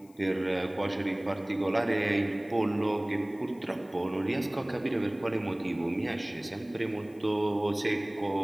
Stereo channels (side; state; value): left; noise; hiss, 29 dB below the sound